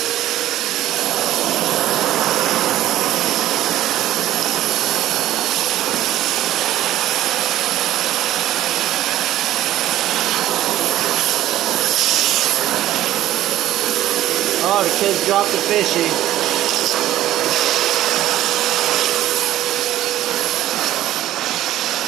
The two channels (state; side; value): quieter; left; 13.6 dB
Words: Oh, the kids dropped the fishy.